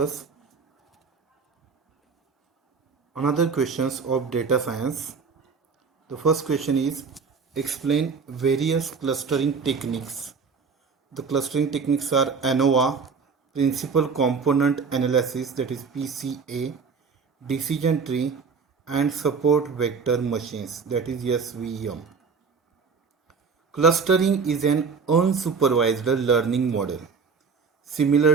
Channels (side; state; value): left; quieter; 5.4 dB